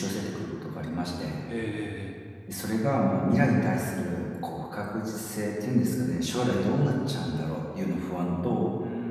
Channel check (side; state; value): both; identical; correlation 1.00